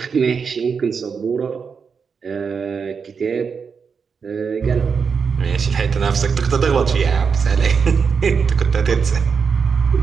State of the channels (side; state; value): left; quieter; 5.9 dB